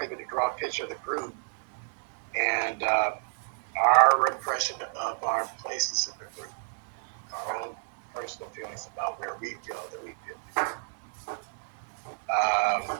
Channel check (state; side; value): silent; left; digital silence